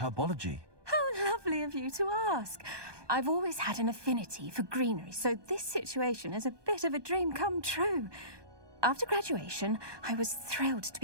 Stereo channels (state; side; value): late; left; 1.2 ms